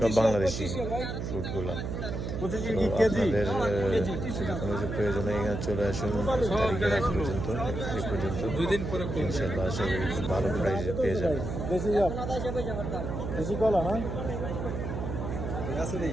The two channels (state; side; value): noise; right; hum, 4 dB below the sound